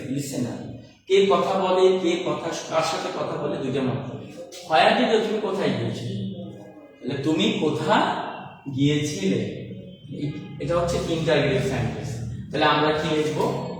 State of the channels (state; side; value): identical; both; correlation 1.00